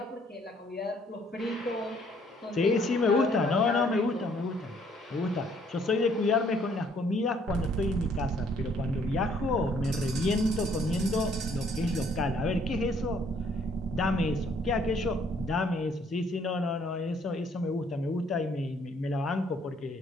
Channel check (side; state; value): both; normal; correlation 0.64